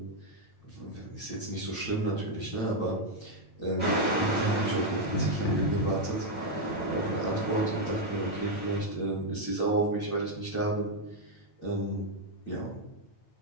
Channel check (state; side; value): late; right; 9.0 ms